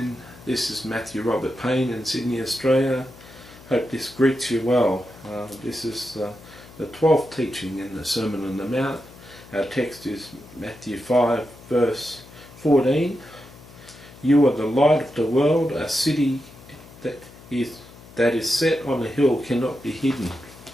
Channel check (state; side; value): noise; left; hum, 20 dB below the sound